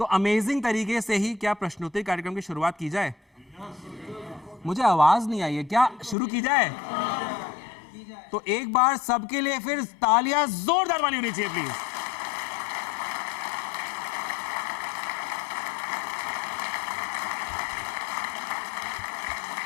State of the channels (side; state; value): right; drops out; at 6.2 s